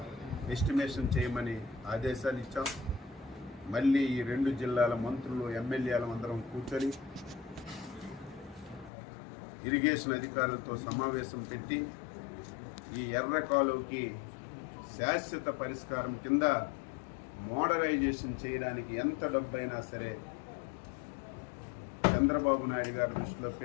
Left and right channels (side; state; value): right; drops out; at 8.9 s